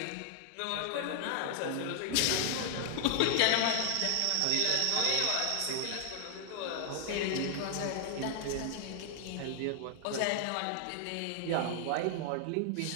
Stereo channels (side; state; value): both; different; correlation 0.00